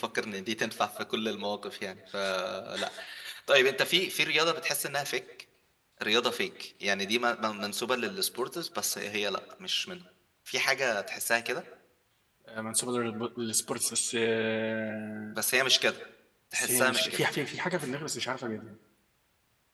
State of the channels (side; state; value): both; identical; correlation 1.00